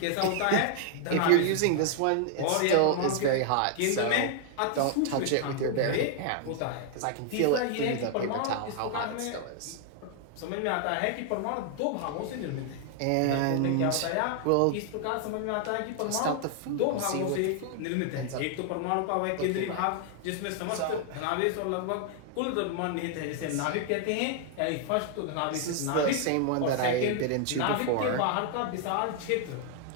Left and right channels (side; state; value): both; different; correlation 0.00